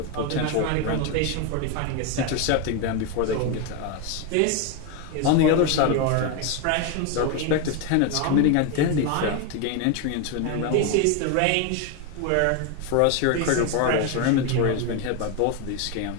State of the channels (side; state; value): both; different; correlation 0.02